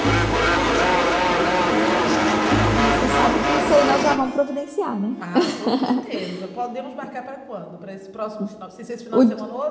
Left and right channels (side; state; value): both; identical; correlation 1.00